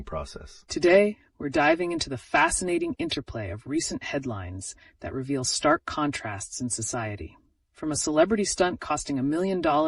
process. Today, we're diving into the fascinating interplay of recent headlines that reveal stark contrasts in society. From a celebrity stunt costing $1 million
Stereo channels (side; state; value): both; identical; correlation 1.00